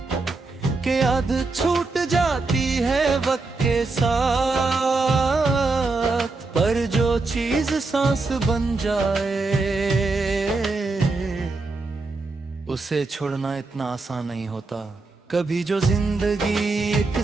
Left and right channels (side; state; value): left; quieter; 3.6 dB